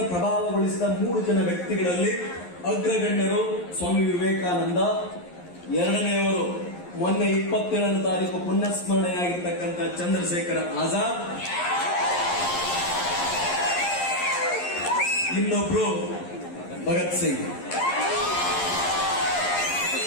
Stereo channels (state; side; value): late; right; 11 ms